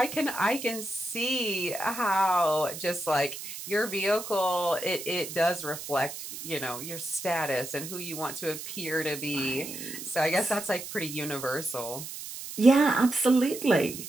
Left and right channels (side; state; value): right; noise; hiss, 9 dB below the sound